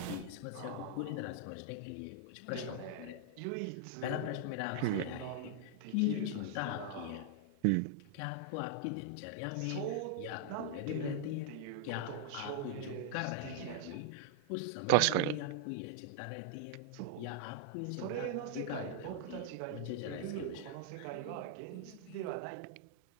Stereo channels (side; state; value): both; different; correlation 0.00